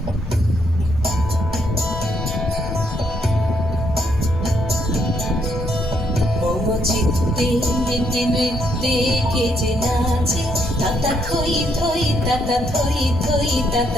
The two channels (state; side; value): normal; both; correlation 0.74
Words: চিত্তে নৃত্যে নৃত্যে কে যে নাচে তাতা থই থই তাতা থই থই